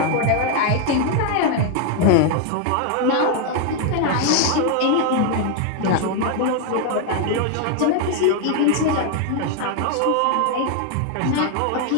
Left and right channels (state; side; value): different; both; correlation 0.00